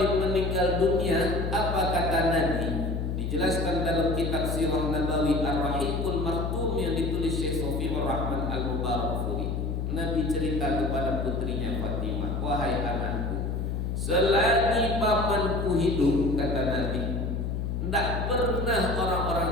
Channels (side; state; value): left; noise; hum, 1 dB below the sound